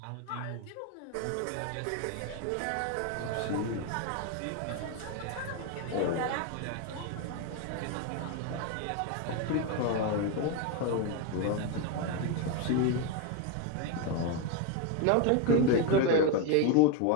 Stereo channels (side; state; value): both; different; correlation 0.02